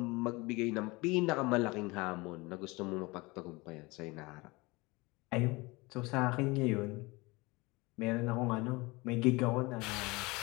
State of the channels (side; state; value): right; quieter; 24.0 dB